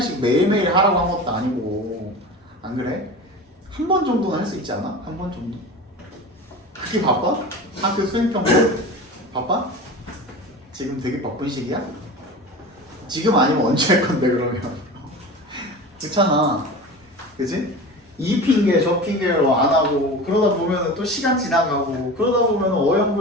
매일매일 하라고 한 것도 아니고. 안 그래? 한 번 정도는 할 수 있지 않아? 한 번 정도? 그렇게 바빠? 학교 수행평가 바빠? 지금 되게 바쁜 시기야? 지금 아니면 언제 할 건데 그러면? 그렇잖아. 그치? 이 핑계 저 핑계로 안 하고 그러다 보면 또 시간 지나가고 그러다 보면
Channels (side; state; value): both; normal; correlation 0.32